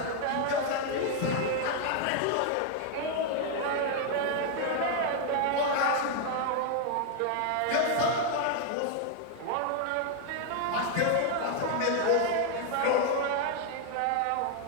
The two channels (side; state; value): both; different; correlation 0.00